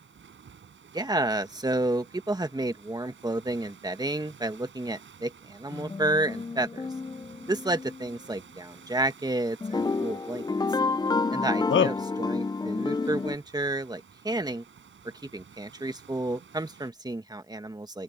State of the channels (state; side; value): normal; both; correlation 0.55